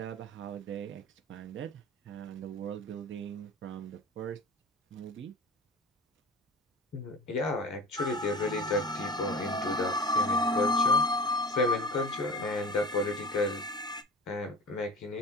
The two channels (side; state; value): both; normal; correlation 0.35